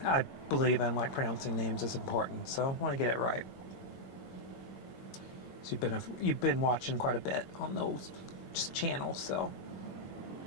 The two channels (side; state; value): right; late; 21 ms